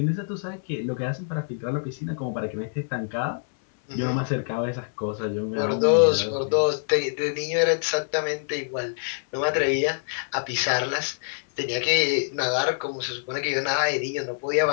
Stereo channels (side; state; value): right; silent; digital silence